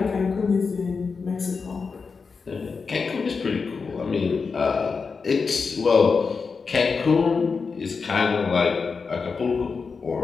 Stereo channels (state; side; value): quieter; right; 5.0 dB